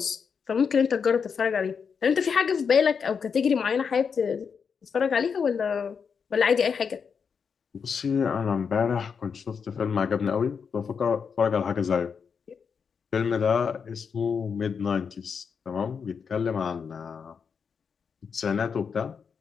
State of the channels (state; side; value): quieter; right; 6.2 dB